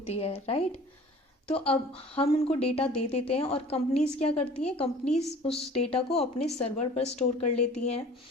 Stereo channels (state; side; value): normal; both; correlation 0.46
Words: है, राइट। तो अब हम उनको डेटा दे देते हैं और कंपनीज क्या करती हैं, कंपनीज उस डेटा को अपने सर्वर पर स्टोर कर लेती हैं।